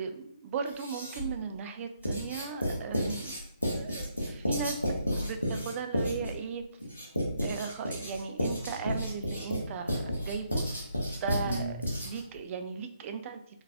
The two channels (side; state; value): both; inverted; correlation -0.73